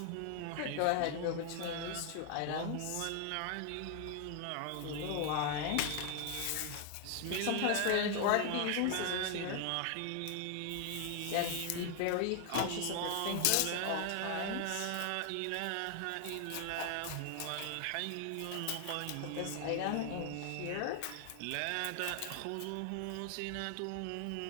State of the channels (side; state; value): both; different; correlation 0.00